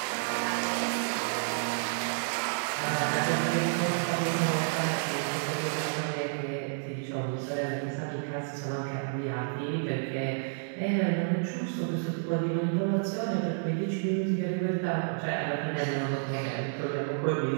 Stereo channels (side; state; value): left; silent; 56 dB below the other